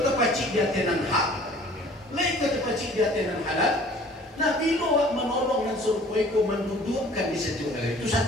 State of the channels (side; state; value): both; normal; correlation 0.51